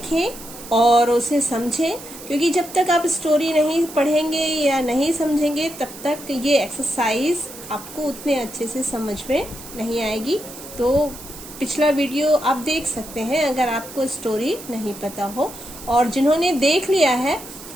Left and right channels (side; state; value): right; noise; hiss, 15 dB below the sound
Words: और उसे समझें, क्योंकि जब तक आप स्टोरी नहीं पढ़ेंगे या नहीं समझेंगे तब तक ये एक्सरसाइज आपको उतने अच्छे से समझ में नहीं आएगी। तो पिछला वीडियो आप देख सकते हैं अगर आपको स्टोरी नहीं पता हो, और जिन्होंने देख लिया है